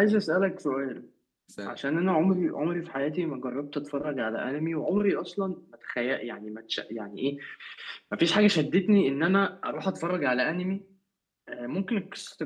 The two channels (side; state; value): both; identical; correlation 1.00